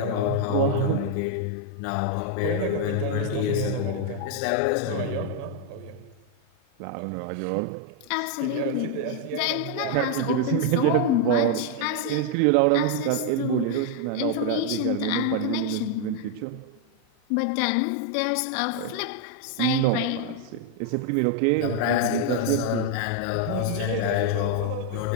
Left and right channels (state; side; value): different; both; correlation 0.00